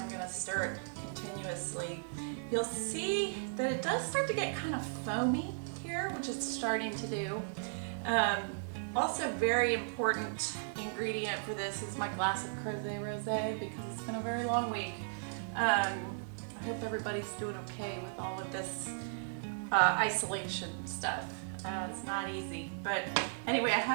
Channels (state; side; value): silent; left; digital silence